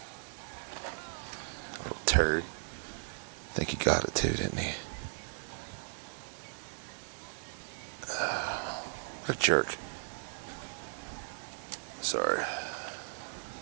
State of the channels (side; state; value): left; silent; 54 dB below the other